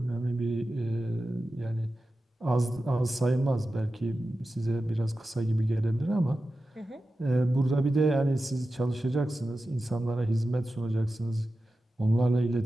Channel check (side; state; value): both; normal; correlation 0.93